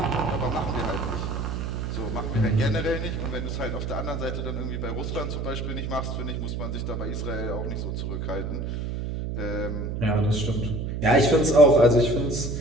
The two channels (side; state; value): right; noise; hum, 3 dB below the sound